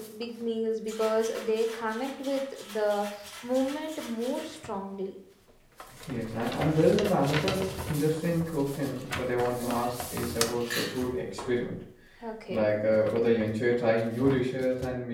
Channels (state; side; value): identical; both; correlation 1.00